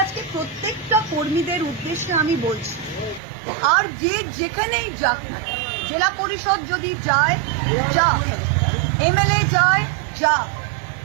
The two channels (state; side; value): drops out; left; at 3.2 s